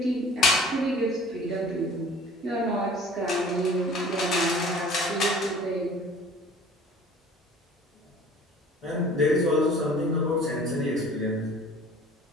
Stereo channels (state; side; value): normal; both; correlation 0.48